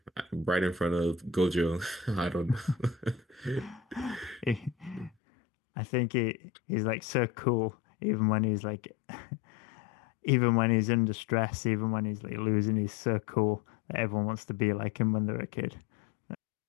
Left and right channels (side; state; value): right; drops out; at 5.1 s